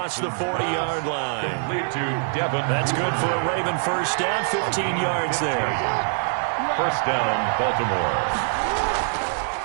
the 40-yard line. That's good for a Raven first down, 15 yards there. First down, Baltimore.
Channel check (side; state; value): left; silent; 63 dB below the other